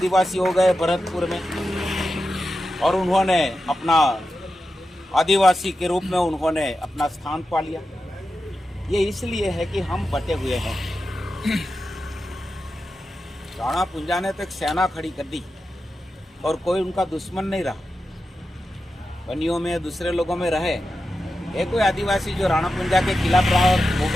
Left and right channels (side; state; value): both; normal; correlation 0.91